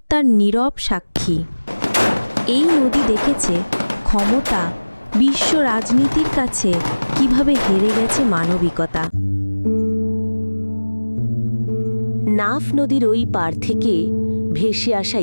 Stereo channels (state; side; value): inverted; both; correlation -1.00